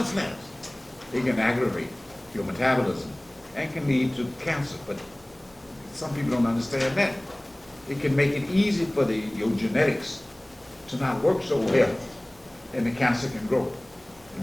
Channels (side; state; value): right; noise; hum, 30 dB below the sound